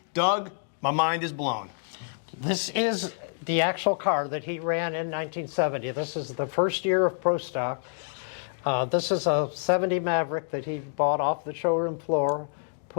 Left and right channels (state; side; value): silent; right; digital silence